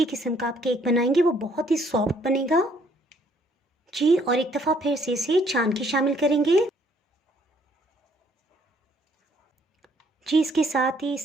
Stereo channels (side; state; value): both; normal; correlation 0.65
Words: किस्म का आप केक बनाएंगे वो बहुत ही सॉफ्ट बनेगा। जी और एक दफ़ा फिर से इसे छान के शामिल करेंगे। जी इसके साथ ही